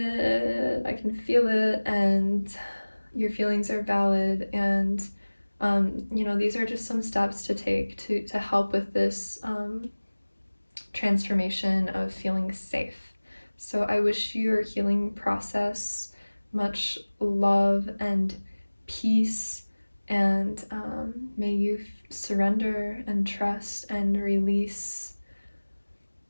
and your feelings are valid, and these are just some steps to take to help with this transformation of feeling safe. So I wish your healing process much love and peace, and may you surrender and trust and release.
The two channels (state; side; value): inverted; both; correlation -1.00